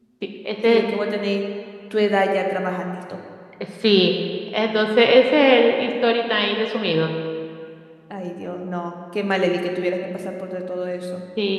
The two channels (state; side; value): identical; both; correlation 1.00